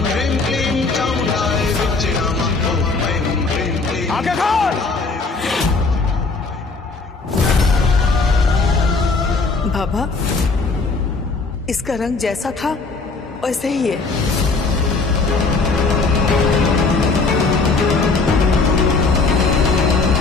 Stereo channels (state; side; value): quieter; right; 4.0 dB